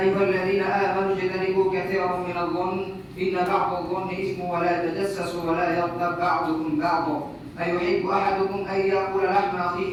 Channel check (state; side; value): identical; both; correlation 1.00